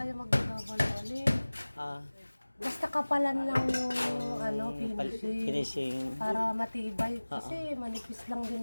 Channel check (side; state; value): both; inverted; correlation -1.00